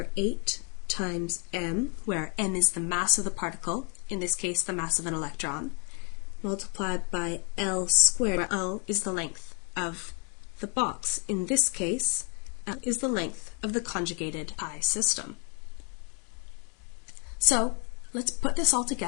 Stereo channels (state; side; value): quieter; right; 37.6 dB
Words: 8 times m, where m is the mass of the particle, in this case the mass of an electron, multiplied by L squared, where L is the length of the box. In this case, L is the length of the conjugated pi system. So, let's put this all